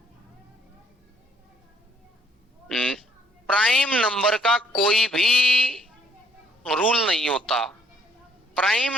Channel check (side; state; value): both; normal; correlation 0.65